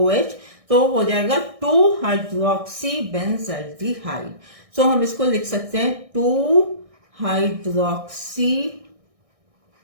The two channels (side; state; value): left; late; 1.6 ms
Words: तो हो जाएगा 2-हाइड्रोक्सी बेंजल्डिहाइड. सो हम इसको लिख सकते हैं two hydroxy